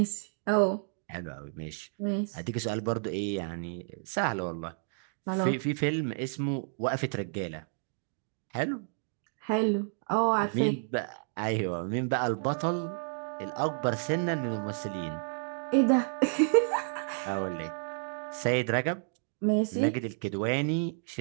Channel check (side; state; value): left; silent; digital silence